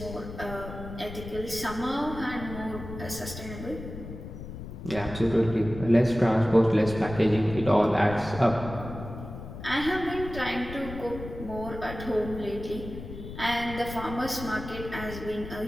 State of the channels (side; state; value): left; noise; rumble, 10 dB below the sound